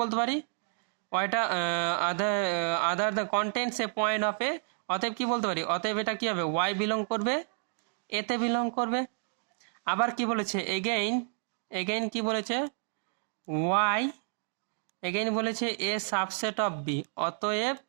বলতে পারি, ওইটা other the contents A point of A, অতএব কি বলতে পারি, অতএব এটা কি হবে ওয়াই বিলং করবে এতে বিলং করবে। আবার কি বলেছে এগেইন কি বলেছে ওয়াই, এগেইন বলেছে এ সাবসেট অফ বি, অতএব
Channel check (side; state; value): left; silent; digital silence